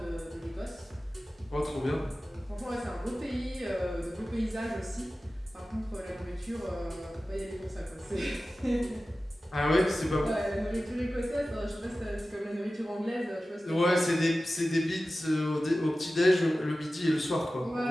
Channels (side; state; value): both; normal; correlation 0.95